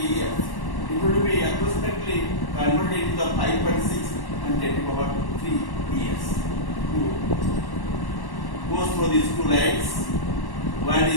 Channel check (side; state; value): right; late; 1.1 ms